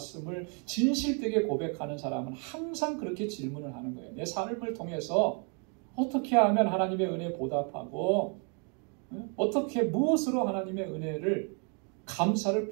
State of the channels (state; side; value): quieter; left; 38.8 dB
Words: 진실되게 고백하는 사람은 항상 그렇게 질문을 하는 거예요. 내 삶을 통해서 어떻게 하면 하나님의 은혜에 보답하고 어떻게 무엇으로 하나님의 은혜를 감사를